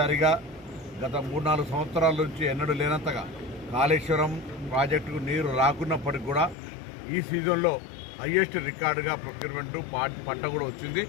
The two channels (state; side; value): drops out; right; at 6.6 s